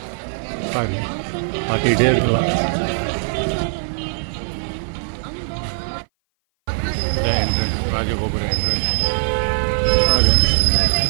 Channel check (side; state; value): left; silent; 58 dB below the other